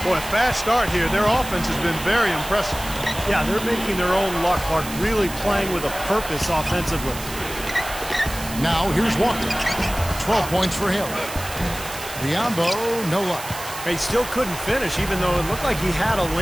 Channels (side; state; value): right; noise; hiss, 11 dB below the sound